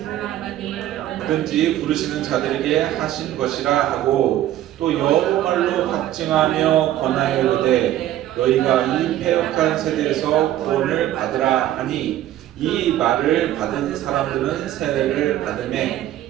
하나님을 누구든지 부르시는 자들에게 하신 것이라 하고 또 여호말로 확증하며 권하여 이르되 너희가 이 패역한 세대에서 구원을 받으라 하니 이 말을 받은 사람들은 세례를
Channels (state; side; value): quieter; left; 13.0 dB